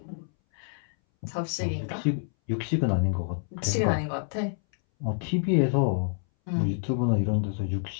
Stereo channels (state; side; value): silent; right; 60 dB below the other